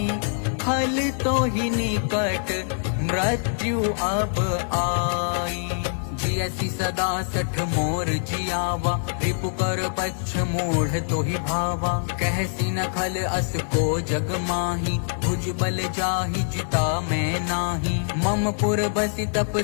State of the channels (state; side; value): silent; right; 62 dB below the other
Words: खल तो ही निकट मृत्यु अब आई। जियसी सदा सठ मोर जियावा रिपु कर पच्छ मूढ़ तो ही भावा। कहसी न खल अस को जग माही भुज बल जाहि जिता मैं नाही। मम पुर बसी तप